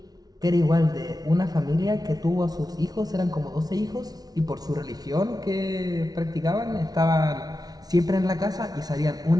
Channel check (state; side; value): late; left; 0.19 ms